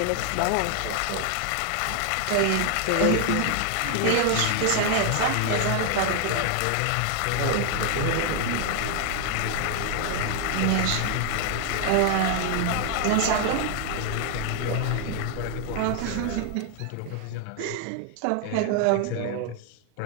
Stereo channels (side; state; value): both; different; correlation 0.00